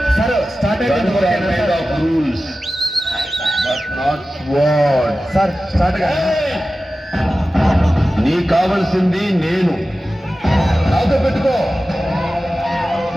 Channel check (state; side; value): normal; both; correlation 0.95